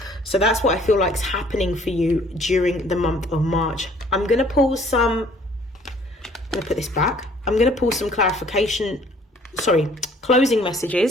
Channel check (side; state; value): both; normal; correlation 0.58